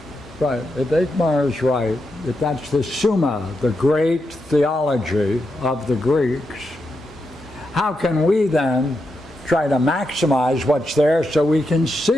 Right. If Eichmar is right, if that's the Summa, the great theology of the Greeks, how can we then try to maximize what's there so we can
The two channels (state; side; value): normal; both; correlation 0.85